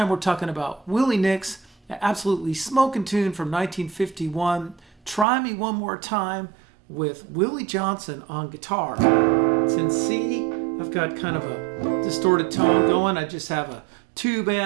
we're talking about Willie Nix, an absolutely smoking tune from 1951, Try Me One More Time, with Willie Johnson on guitar. It's in C. I've got kind of a distorted tone going. I just have a tube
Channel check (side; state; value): left; drops out; at 5.2 s